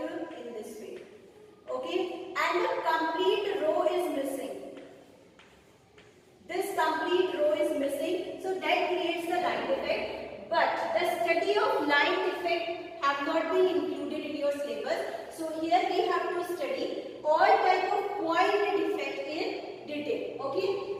in this way, okay, and the complete row is missing. This complete row is missing, so that creates the line defect. But the study of line defect have not been included in your syllabus. So here we have to study all type of point defect in detail.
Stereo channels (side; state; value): both; identical; correlation 1.00